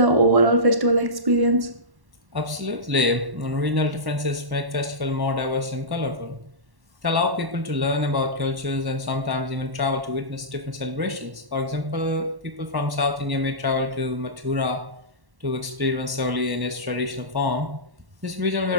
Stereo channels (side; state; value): left; late; 1.1 ms